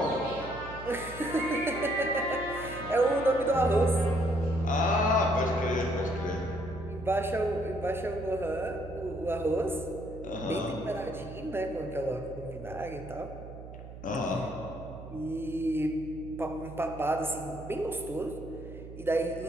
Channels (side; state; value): right; noise; hum, 13 dB below the sound